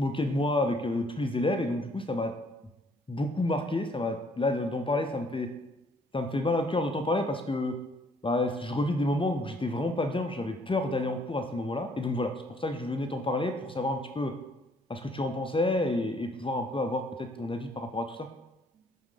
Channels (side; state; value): both; normal; correlation 0.63